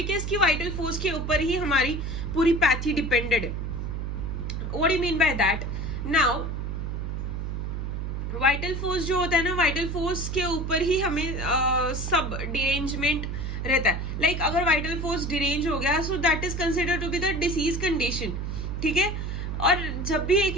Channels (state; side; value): noise; right; hum, 3 dB below the sound